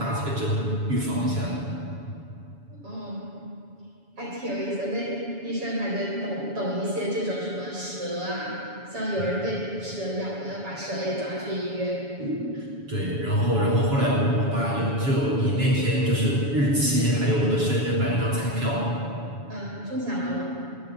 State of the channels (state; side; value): late; left; 7.1 ms